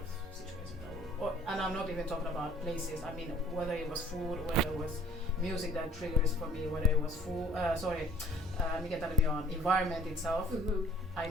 situations. And I'm not even talking about places. I mean, whether it was food, whether it was music that triggers for me, whether it was food. Environment itself. I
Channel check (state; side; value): normal; both; correlation 0.54